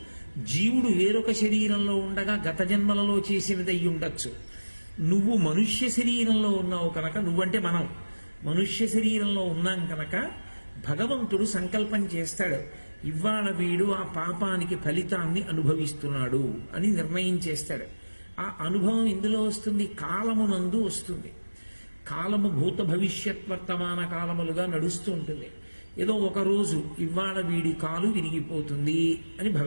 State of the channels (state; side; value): inverted; both; correlation -1.00